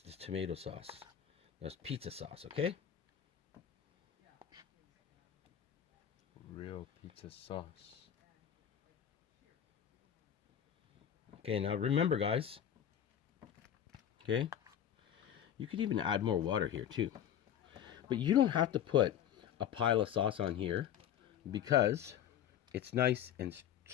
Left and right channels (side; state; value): right; quieter; 9.8 dB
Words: this tomato sauce. That's pizza sauce, okay? Real pizza sauce. Okay, now remember, guys. Okay? You could even add more water here, too. But you don't have to put a pile of sauce on here because it's nice and